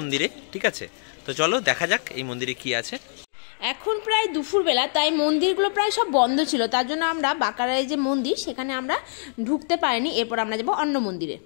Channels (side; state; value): right; silent; digital silence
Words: ঠিক আছে? তো চলো দেখা যাক এই মন্দিরে কি আছে। এখন প্রায় দুপুরবেলা, তাই মন্দিরগুলো প্রায় সব বন্ধ ছিল, তার জন্য আমরা বাঁকারায় যে মন্দির সেখানে আমরা ঢুকতে পারিনি। এরপর আমরা যাবো অন্য মন্দিরে।